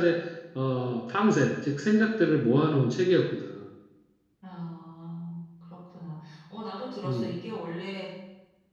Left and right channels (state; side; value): identical; both; correlation 1.00